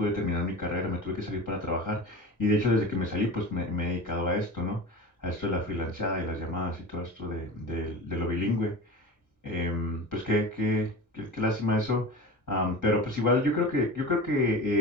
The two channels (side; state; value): both; normal; correlation 0.32